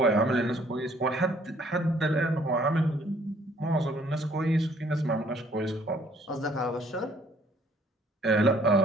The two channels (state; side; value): normal; both; correlation 0.61